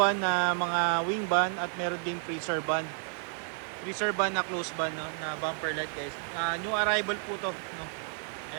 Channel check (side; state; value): left; silent; 57 dB below the other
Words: na mga wing ban at meron ding freezer ban. Freezer ban na close ban, no, na bumper light guys. New arrival po to, no.